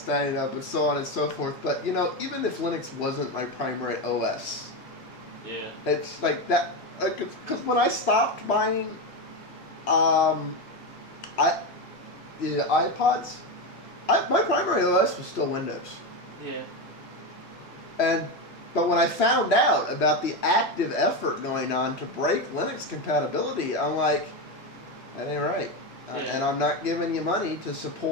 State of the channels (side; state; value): both; normal; correlation 0.14